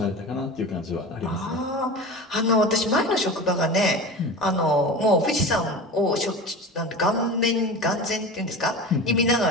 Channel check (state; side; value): normal; both; correlation 0.31